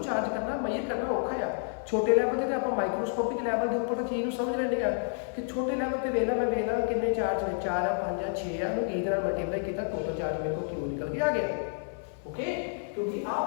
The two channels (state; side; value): silent; right; 58 dB below the other